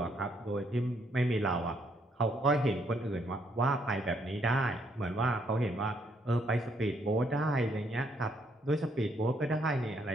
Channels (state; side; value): normal; both; correlation 0.71